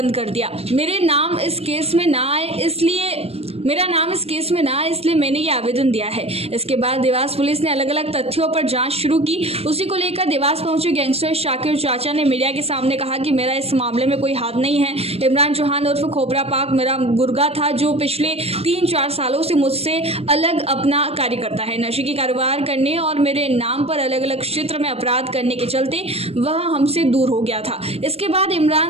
कर दिया। मेरा नाम इस केस में ना आए इसलिए मैंने ये आवेदन दिया है। इसके बाद देवास पुलिस ने अलग अलग तथ्यों पर जांच शुरू की। उसी को लेकर देवास पहुंचे गैंगस्टर शाकिर चाचा ने मीडिया के सामने कहा कि मेरा इस मामले में कोई हाथ नहीं है। इमरान चौहान उर्फ खोपरापाक मेरा गुर्गा था, जो पिछले 3-4 सालों से मुझसे अलग अपना कार्य करता है। नशे की कारोबार करने और मेरे नाम पर अलग अलग क्षेत्र में अपराध करने के चलते वह हमसे दूर हो गया था। इसके बाद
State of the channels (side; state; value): left; late; 0.29 ms